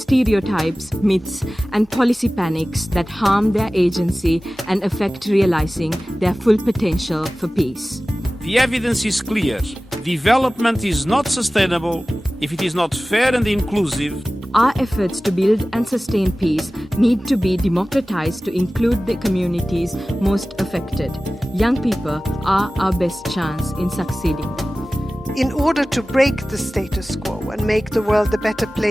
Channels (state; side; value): normal; both; correlation 0.97